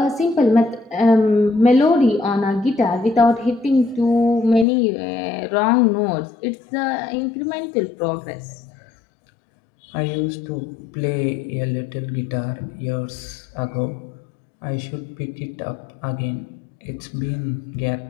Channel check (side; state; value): right; drops out; at 4.7 s